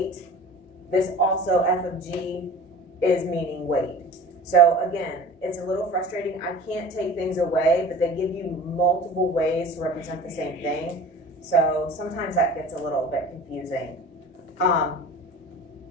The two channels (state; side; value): normal; both; correlation 0.40